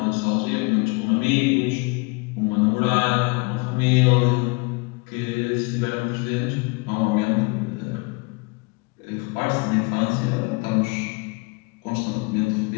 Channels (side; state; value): right; quieter; 29.2 dB